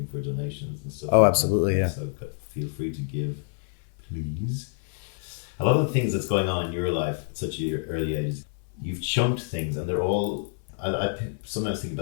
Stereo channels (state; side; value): silent; right; 58 dB below the other